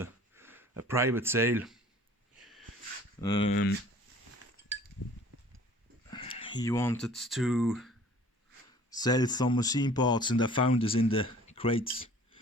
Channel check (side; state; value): both; normal; correlation 0.50